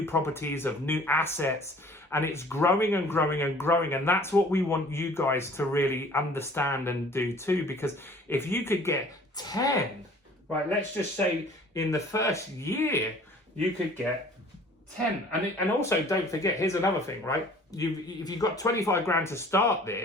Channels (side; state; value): both; normal; correlation 0.50